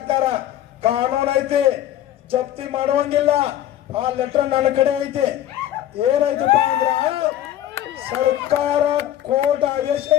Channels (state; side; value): quieter; right; 12.1 dB